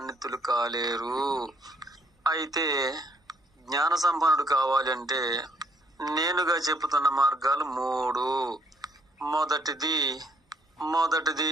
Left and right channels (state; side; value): normal; both; correlation 0.67